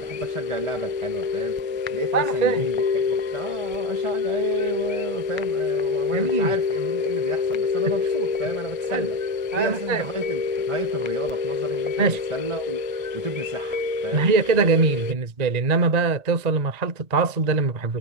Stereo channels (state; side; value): late; left; 1.8 ms